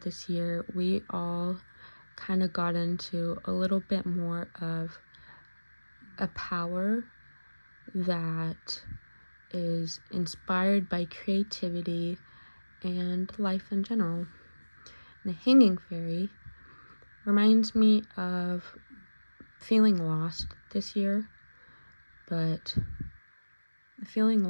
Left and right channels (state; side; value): inverted; both; correlation -1.00